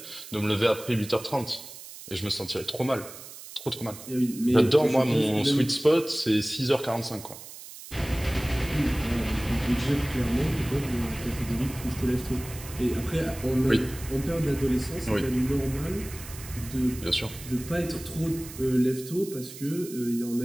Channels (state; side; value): noise; right; hiss, 14 dB below the sound